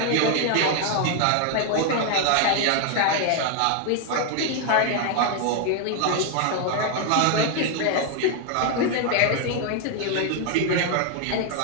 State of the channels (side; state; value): both; different; correlation 0.01